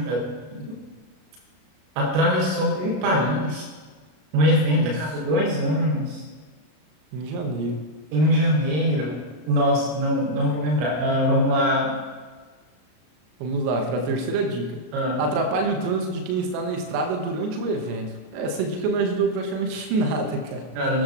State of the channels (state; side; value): late; left; 33 ms